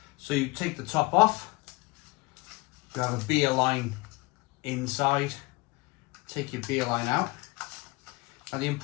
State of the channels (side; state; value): right; quieter; 24.4 dB